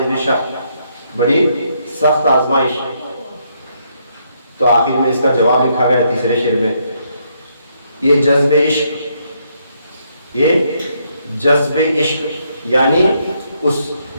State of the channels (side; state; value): both; inverted; correlation -0.74